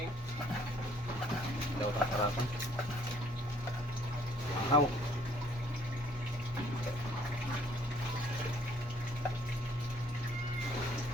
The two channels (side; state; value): both; normal; correlation 0.62